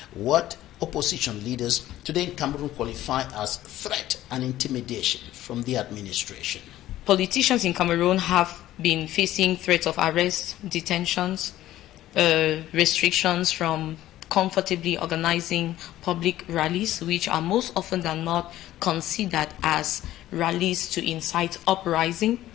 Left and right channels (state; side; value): quieter; right; 14.2 dB